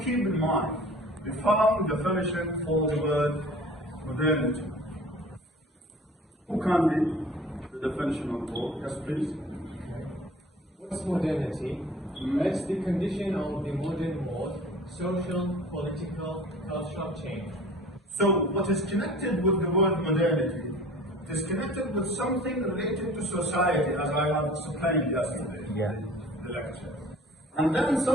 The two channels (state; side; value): normal; both; correlation 0.45